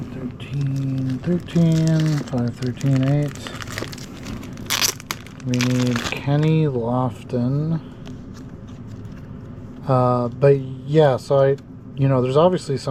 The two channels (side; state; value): both; identical; correlation 1.00